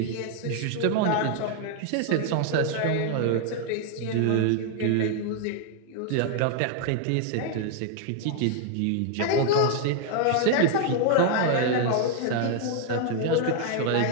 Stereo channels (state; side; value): different; both; correlation 0.00